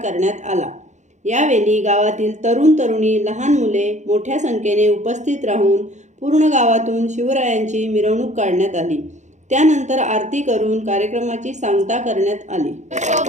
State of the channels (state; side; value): late; left; 0.34 ms